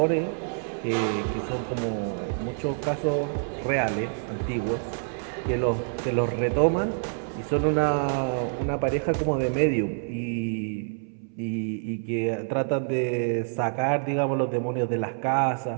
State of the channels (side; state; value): left; silent; 60 dB below the other